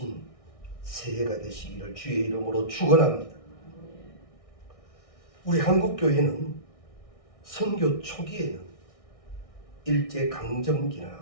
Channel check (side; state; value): right; late; 1.6 ms